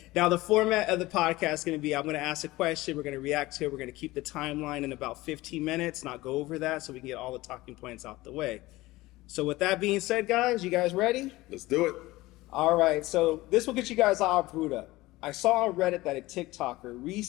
Now, the format of the podcast is going to be, I'm going to ask a question, we're going to react to it, we're going to keep the timeline in about 15 minutes, not go over that, so we can get all the talking points out the way. So with that being said, guys, you guys ready? Let's do it. All right, so this will get you guys all brewed up. I saw on Reddit that a TikToker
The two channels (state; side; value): quieter; right; 19.1 dB